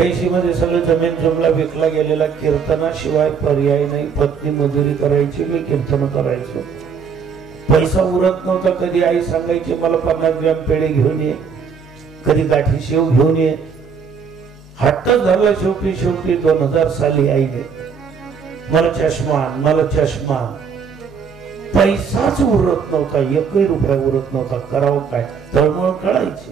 मध्ये सगळं जमीन जुमला विकला गेलेला, कीर्तनाशिवाय पर्याय नाही. पत्नी मजुरी करायची, मी कीर्तन करायचो. पैसा उरत नव्हता. कधी आई सांगायची मला 50 ग्रॅम पेढे घेऊन ये, कधी गाठी शेव घेऊन ये. हट्ट झाला शेवटी 2000 साली आईने, मला चष्मा आण, मला चष्मा आण. पैसाच उरत नव्हता, 1 रुपया उरत नव्हता. करावं काय, तळमळ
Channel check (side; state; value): left; quieter; 6.2 dB